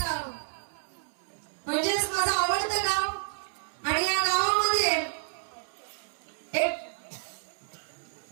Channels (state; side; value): silent; left; 58 dB below the other